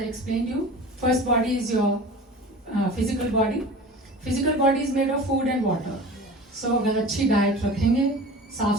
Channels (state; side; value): normal; both; correlation 0.38